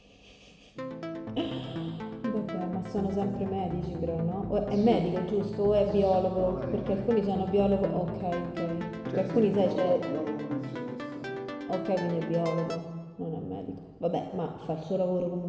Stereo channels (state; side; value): identical; both; correlation 1.00